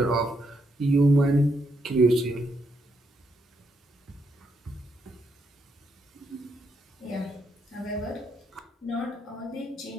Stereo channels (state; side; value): normal; both; correlation 0.77